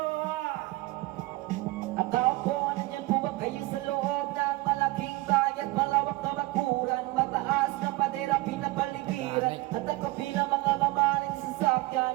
At tao po, nandyan po ba kayo sa loob ng malaking bayan, malawak na bakuran, mataas na padera, pinapaligiran, at nakapila mga mamaling sasakyan,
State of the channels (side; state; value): left; quieter; 20.3 dB